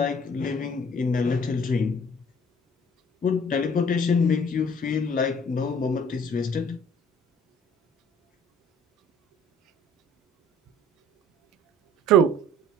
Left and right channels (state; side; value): normal; both; correlation 0.55